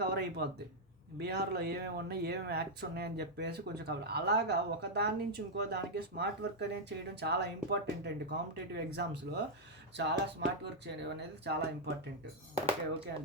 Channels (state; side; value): normal; both; correlation -0.03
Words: కవర్ అయిపోద్ది. బీహార్లో ఏమేమి ఉన్నాయి, ఏమేమి యాక్ట్స్ ఉన్నాయని చెప్పేసి కొంచెం కవర్. అలాగా ఒక దాని నుంచి ఇంకో దానికి స్మార్ట్ వర్క్ అనేది చేయడం చాలా ఇంపార్టెంట్ అండి. కాంపిటేటివ్ ఎగ్జామ్స్లో చాలా స్మార్ట్ వర్క్ చేయడం అనేది చాలా ఇంపార్టెంట్. ఓకే